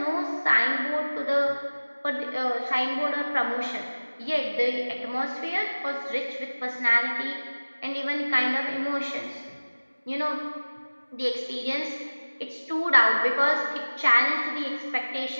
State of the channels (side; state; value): both; inverted; correlation -1.00